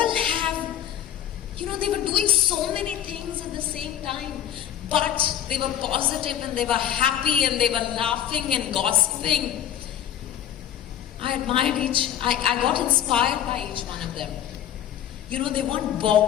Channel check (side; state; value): right; quieter; 10.7 dB